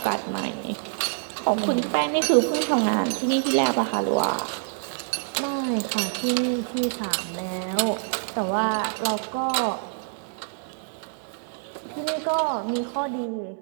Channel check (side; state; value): left; silent; digital silence